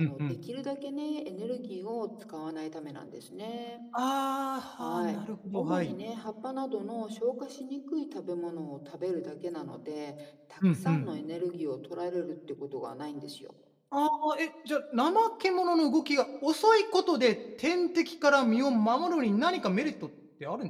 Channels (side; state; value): both; identical; correlation 1.00